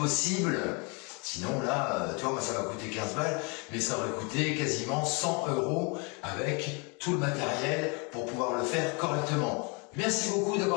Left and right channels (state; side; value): quieter; right; 32.5 dB